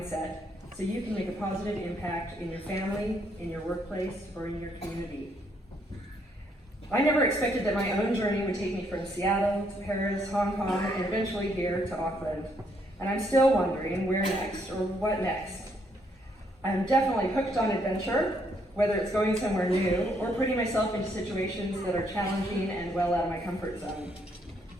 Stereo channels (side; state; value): both; normal; correlation 0.72